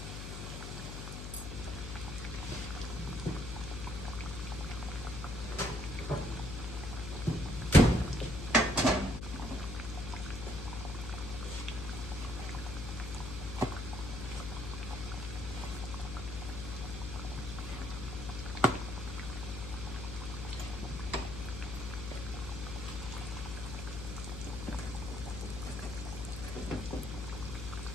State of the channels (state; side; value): noise; left; hum, 6 dB below the sound